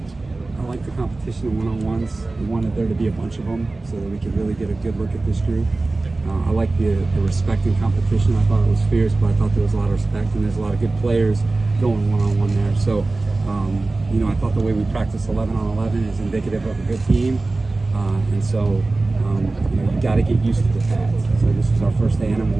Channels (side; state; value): left; quieter; 3.3 dB